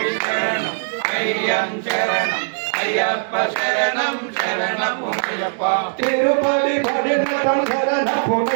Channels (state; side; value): silent; left; digital silence